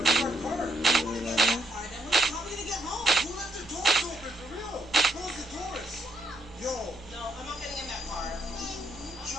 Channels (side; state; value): both; normal; correlation 0.74